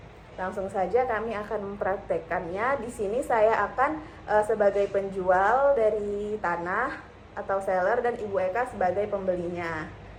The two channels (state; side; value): identical; both; correlation 1.00